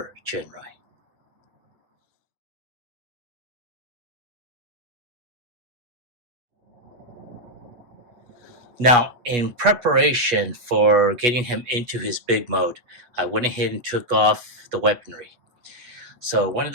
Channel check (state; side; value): late; left; 8.3 ms